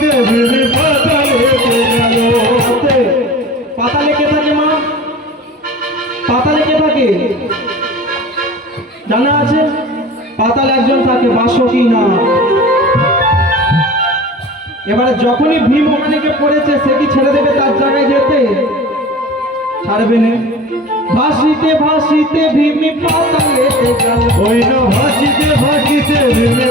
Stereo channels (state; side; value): normal; both; correlation 0.39